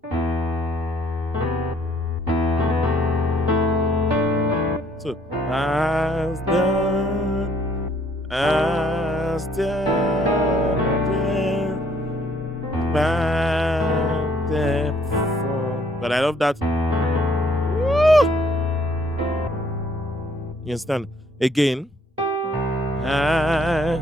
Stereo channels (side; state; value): both; normal; correlation 0.64